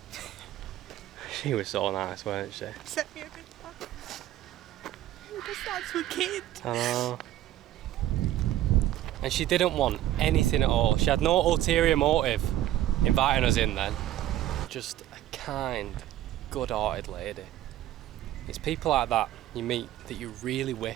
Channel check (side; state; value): left; quieter; 13.3 dB